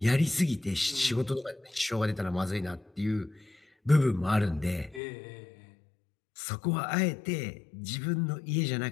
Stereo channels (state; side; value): drops out; right; at 5.0 s